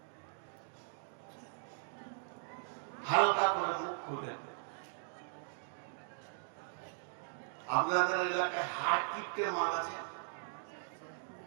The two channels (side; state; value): left; silent; digital silence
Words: হালকা করে মুখ খুলেন। আপনাদের এলাকায় হাড় কিপটে মাল আছে?